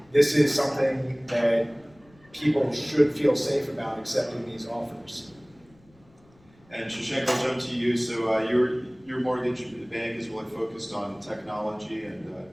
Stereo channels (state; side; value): noise; left; rumble, 29 dB below the sound